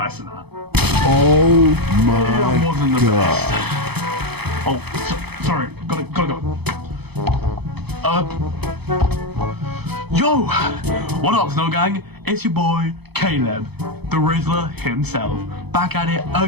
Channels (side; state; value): left; late; 0.98 ms